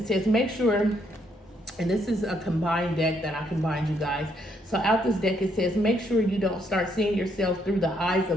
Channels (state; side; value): normal; both; correlation 0.73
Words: says make sure, and this is a combined deck that I combined, you guys. So out this deck, it says make sure you don't start seeing yourself through the eyes